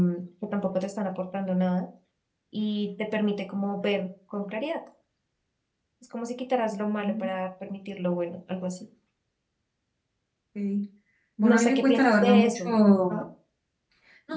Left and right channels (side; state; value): both; identical; correlation 1.00